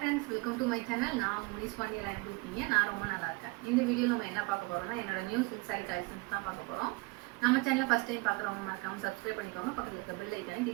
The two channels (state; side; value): quieter; left; 25.9 dB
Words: welcome to my channel. நான் உங்கள் முனிஸ் பாண்டியெல்லாம் எப்படி இருக்கீங்க? நான் ரொம்ப நல்லா இருக்கேன். இந்த வீடியோவில் நம்ம என்ன பார்க்க போகிறோம்னா, என்னோட நியூ சில்க் சாரி கலெக்ஷன்ஸ் தான் பார்க்க போகிறோம். நம்ம சேனலில் ஃபஸ்ட் டைம் பார்க்குறவங்க மறக்காமல் சப்ஸ்கிரைப் பண்ணிக்கோங்க. பக்கத்தில் இருக்க பெல் ஐக்கானே